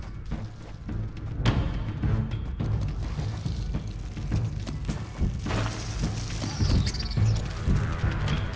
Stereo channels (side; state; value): both; identical; correlation 1.00